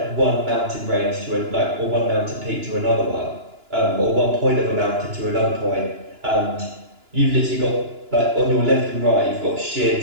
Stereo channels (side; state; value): left; late; 2.9 ms